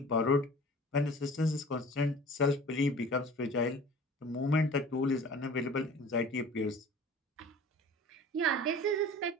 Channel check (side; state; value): both; normal; correlation 0.44